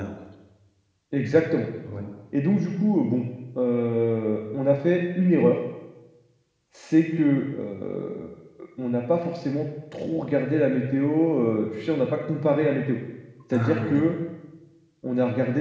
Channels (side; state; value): both; identical; correlation 1.00